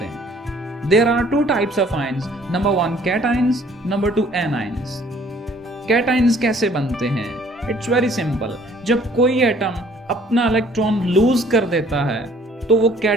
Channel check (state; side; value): normal; both; correlation 0.57